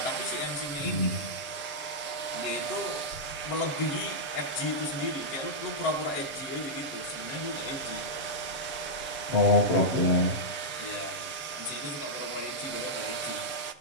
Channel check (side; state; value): right; late; 6.8 ms